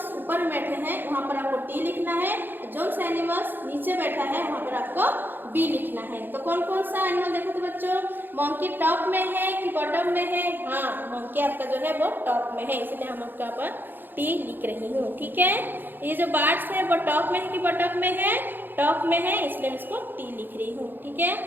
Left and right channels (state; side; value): late; left; 0.094 ms